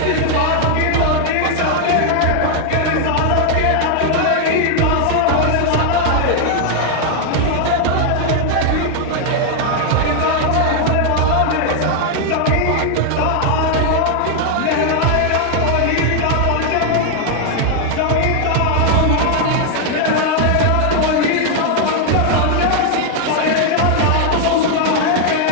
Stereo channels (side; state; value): both; different; correlation 0.00